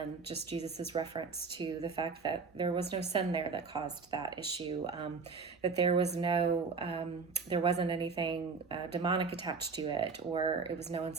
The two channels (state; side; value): quieter; left; 4.8 dB